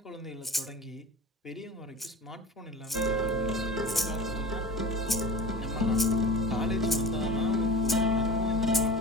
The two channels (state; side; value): normal; both; correlation 0.36